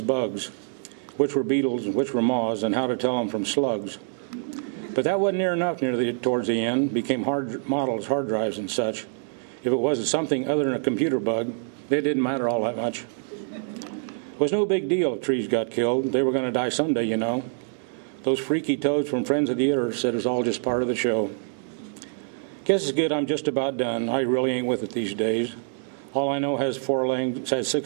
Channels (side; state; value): left; silent; digital silence